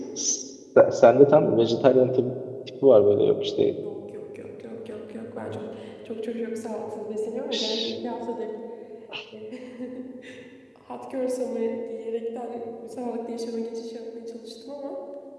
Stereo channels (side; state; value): both; identical; correlation 1.00